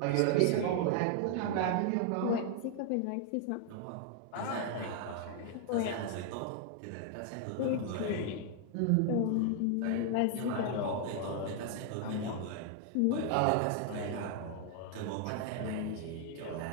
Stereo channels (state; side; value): different; both; correlation 0.00